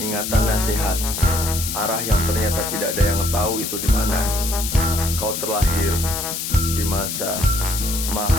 nasihat. Arah yang ternyata tidak ada yang tahu itu di mana. Kau terlahir di masa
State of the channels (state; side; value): noise; left; hiss, 4 dB below the sound